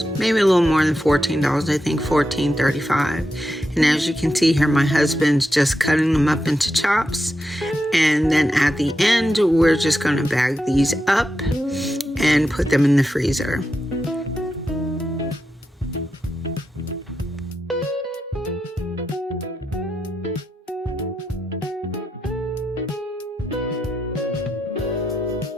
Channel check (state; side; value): normal; both; correlation 0.87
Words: maybe a little more than $14, I think $14.35. And as you can see here, my husband's just cutting them up into chops. And then at the end, we're just going to bag these up and put them in the freezer.